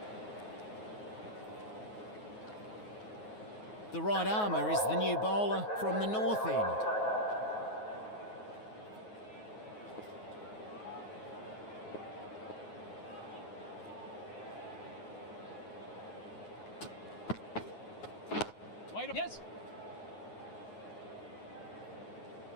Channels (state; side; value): late; right; 9.4 ms